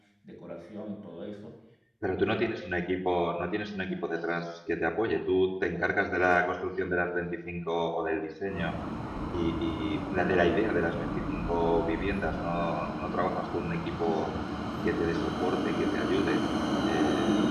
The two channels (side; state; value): both; identical; correlation 1.00